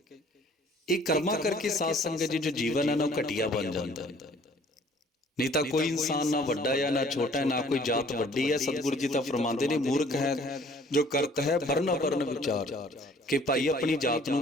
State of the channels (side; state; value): both; normal; correlation 0.56